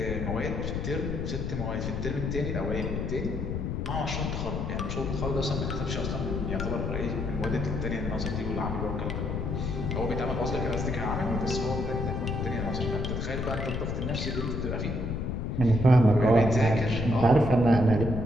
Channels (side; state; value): left; noise; rumble, 2 dB below the sound